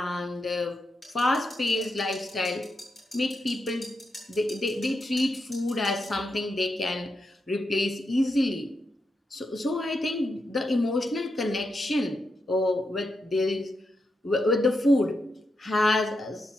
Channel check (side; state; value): both; normal; correlation 0.85